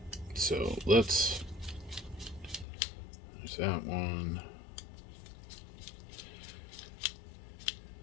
So let's... There's that one.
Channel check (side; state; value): right; drops out; at 2.7 s